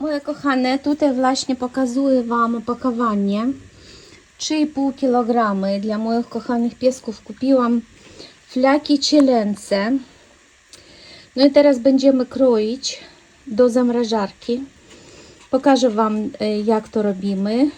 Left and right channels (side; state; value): both; identical; correlation 1.00